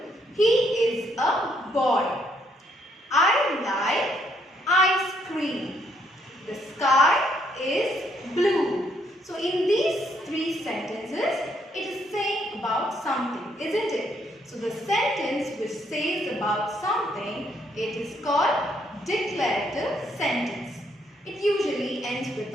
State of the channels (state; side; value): normal; both; correlation 0.71